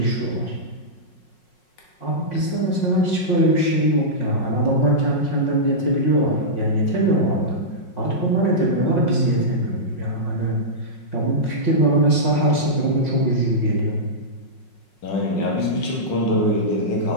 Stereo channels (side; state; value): right; late; 5.5 ms